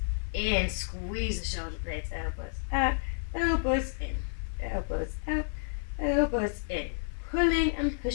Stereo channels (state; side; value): silent; right; 57 dB below the other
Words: in. Squeeze the shoulder blades, elbows out, elbows in, elbows out, elbows in. Pulling and